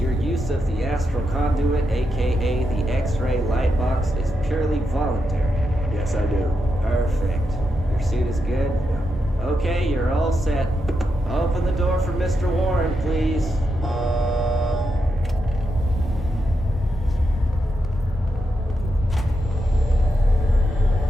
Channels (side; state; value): both; normal; correlation 0.85